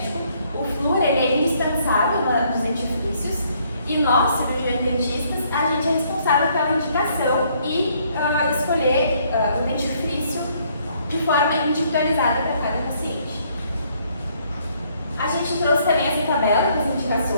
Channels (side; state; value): both; inverted; correlation -0.67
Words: O flúor ele é indispensável nos dentifrícios. E nós, cirurgiões dentistas, a gente é responsável pela indicação e escolher o dentifrício de forma individualizada para cada paciente. A gente trouxe também essa tabela com as